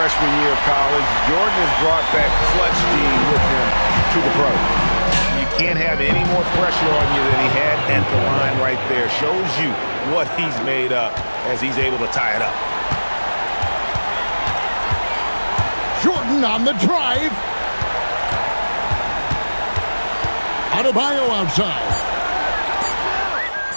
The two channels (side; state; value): both; inverted; correlation -1.00